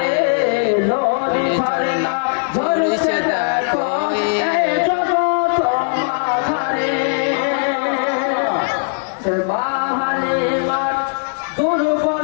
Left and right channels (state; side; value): silent; right; digital silence